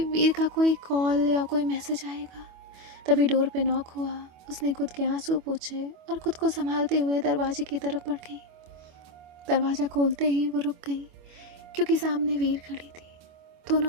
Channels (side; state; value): left; late; 25 ms